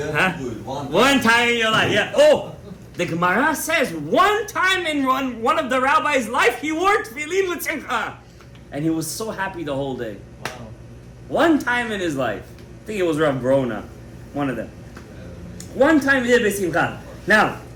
huh? One time in your life, yeah. Oh, the Gemara says one time in one of the rabbi's life, he wore tefillin with simcha, and he was so happy the whole day. Wow. One time in his life. I think it was Rav Brona, one of them. One time he did besimcha. Now,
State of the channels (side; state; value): both; identical; correlation 1.00